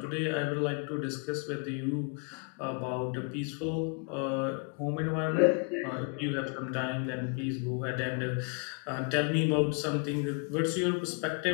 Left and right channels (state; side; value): quieter; right; 37.3 dB